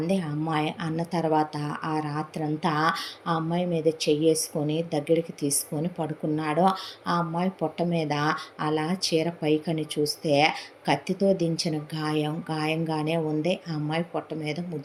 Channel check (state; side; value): identical; both; correlation 1.00